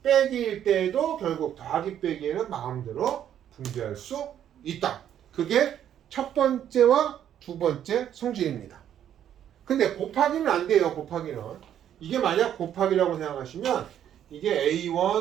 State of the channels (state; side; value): quieter; left; 10.2 dB